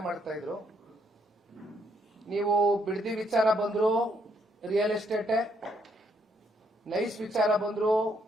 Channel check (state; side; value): normal; both; correlation 0.73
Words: ಮಾಡ್ತಾ ಇದ್ರು. ನೀವು ಬಿಡದಿ ವಿಚಾರ ಬಂದ್ರು ರಿಯಲ್ ಎಸ್ಟೇಟೆ, ನೈಸ್ ವಿಚಾರ ಬಂದ್ರು